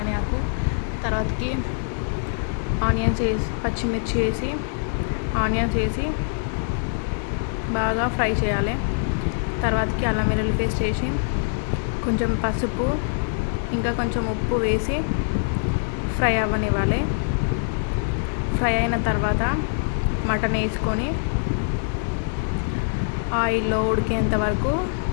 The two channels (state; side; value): silent; right; digital silence